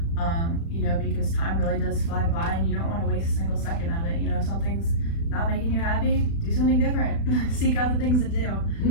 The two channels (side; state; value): right; late; 36 ms